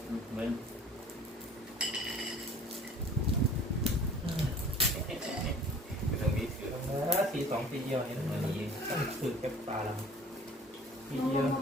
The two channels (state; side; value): normal; both; correlation 0.48